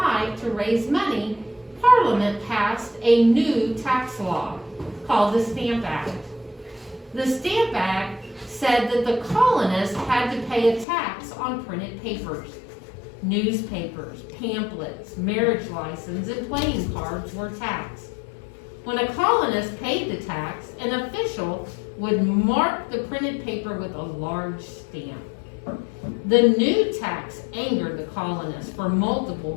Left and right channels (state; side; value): drops out; right; at 10.9 s